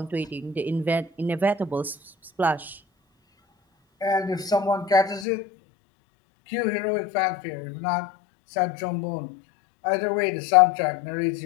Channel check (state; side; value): drops out; right; at 5.2 s